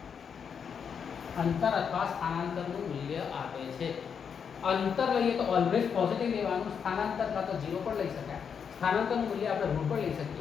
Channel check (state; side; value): quieter; right; 6.9 dB